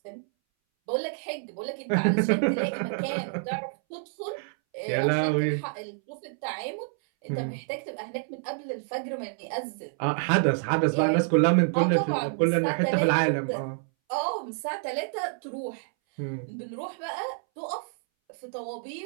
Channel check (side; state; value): left; silent; 59 dB below the other